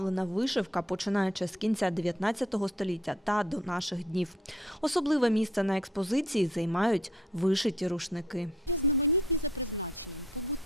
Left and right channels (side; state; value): both; normal; correlation 0.62